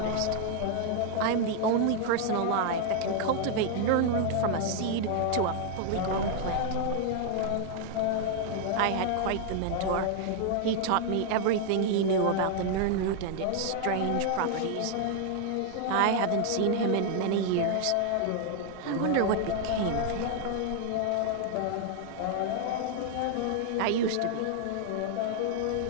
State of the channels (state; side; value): different; both; correlation 0.00